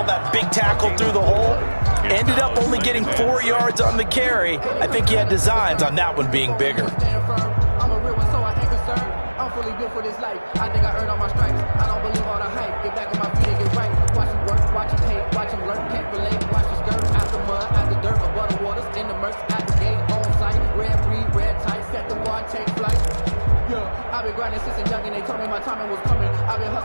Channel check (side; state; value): both; inverted; correlation -1.00